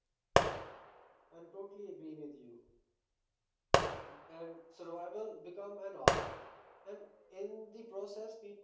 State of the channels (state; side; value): identical; both; correlation 1.00